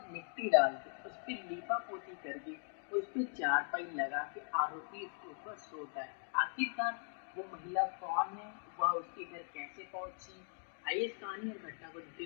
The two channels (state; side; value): silent; right; 51 dB below the other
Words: मिट्टी डाल के उस पर लीपा पोती करके उस पर चारपाई लगा के आरोपी उसके ऊपर सोता है। आखिरकार वो महिला कौन है, वह उसके घर कैसे पहुंची, आइए इस कहानी और घटना को